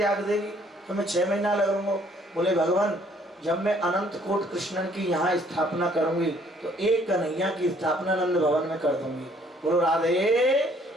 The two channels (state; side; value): normal; both; correlation 0.62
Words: देगी, तो मैं 6 महीना लगूंगा। बोले भगवान, जब मैं अनंत कोट कृष्णन की यहाँ स्थापना करूंगी तो एक कन्हैया की स्थापना नंद भवन में कर दूंगी। बोलो राधे